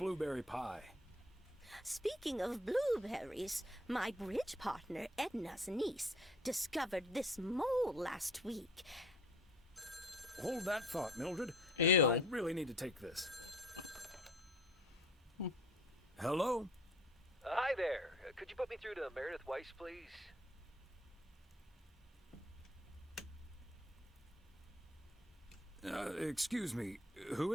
pie? Speaking of blueberries, my bridge partner Edna's niece discovered this mole last week. Hold that thought, Mildred. Ew. I really need to take this. Hello? Hi there. Could you put me through to Meredith Weiss, please? Excuse me. Who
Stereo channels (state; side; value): normal; both; correlation 0.53